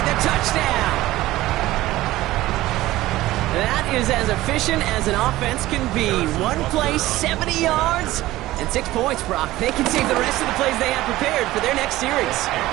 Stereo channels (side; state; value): left; quieter; 16.7 dB